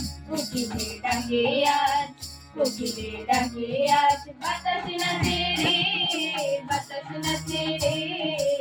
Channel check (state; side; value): identical; both; correlation 1.00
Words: কোকিলের ডাকে আজ, কোকিলের ডাকে আজ বাতাস নাচে রে, বাতাস নাচে রে,